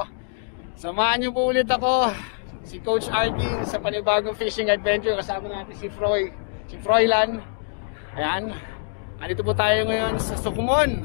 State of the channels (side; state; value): right; silent; digital silence